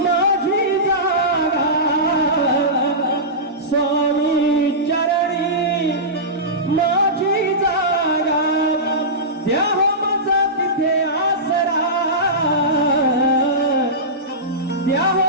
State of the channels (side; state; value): both; normal; correlation -0.17